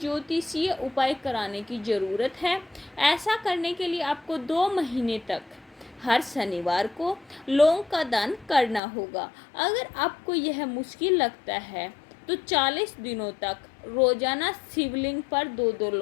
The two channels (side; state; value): right; drops out; at 8.8 s